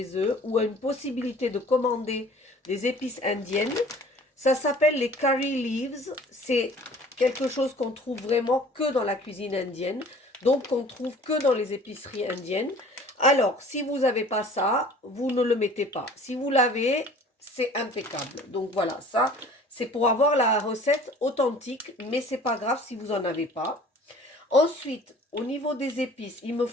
eux ou une possibilité de commander des épices indiennes, ça s'appelle les curry leaves. C'est quelque chose qu'on trouve vraiment que dans la cuisine indienne, donc qu'on trouve que dans les épiceries indiennes. Alors, si vous n'avez pas ça, vous ne le mettez pas. Si vous l'avez, c'est impeccable. Donc voilà, ça, c'est pour avoir la recette authentique, mais c'est pas grave si vous n'en avez pas. Ensuite, au niveau des épices, il me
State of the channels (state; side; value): normal; both; correlation 0.49